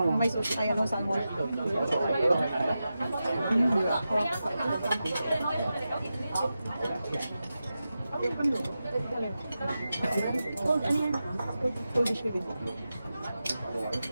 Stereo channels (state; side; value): inverted; both; correlation -0.92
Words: May sushi, ay salmon.